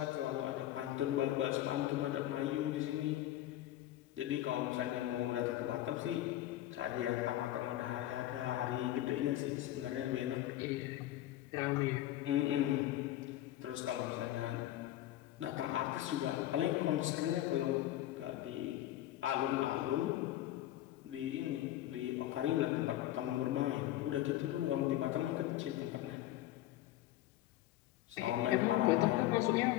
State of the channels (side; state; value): right; quieter; 14.1 dB